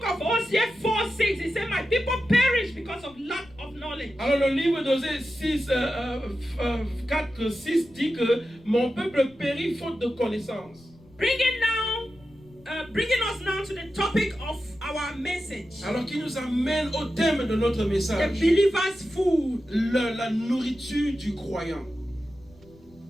of Hosea 4:6, it said, my people perish because of lack of knowledge. Alors le livre d'Osée 4:6 dit que mon peuple périt faute de connaissance. Bringing us now to the topic of our message. Alors qui nous amène au thème de notre message. The believer's food. La nourriture du croyant.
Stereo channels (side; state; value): left; noise; rumble, 26 dB below the sound